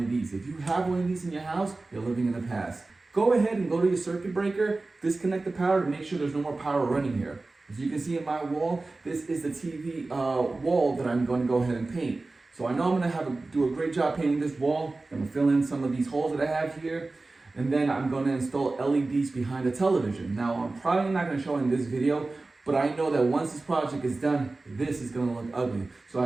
of these. If you have one of these in your house, you're living in the past. Go ahead and go to your circuit breaker, disconnect the power to make sure there's no more power running here. As you can see in my wall, this is the TV wall that I'm going to go ahead and paint. So I know I'm going to do a great job painting this wall. I'm going to fill in some of these holes that I have here. And then I'm going to install LEDs behind the television. Now I'm probably not going to show in this video, but I know that once this project is done, this is going to look ugly. So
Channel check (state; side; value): quieter; left; 3.3 dB